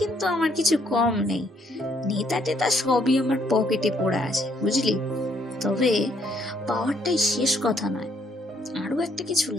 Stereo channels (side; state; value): both; normal; correlation 0.69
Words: কিন্তু আমার কিছু কম নেই। নেতা টেতা সবই আমার পকেটে পড়ে আছে, বুঝলি। তবে পাওয়ারটাই শেষ কথা নয়, আরো একটা কিছু